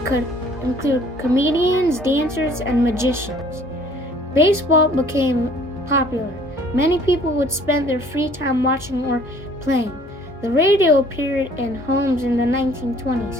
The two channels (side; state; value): both; normal; correlation 0.56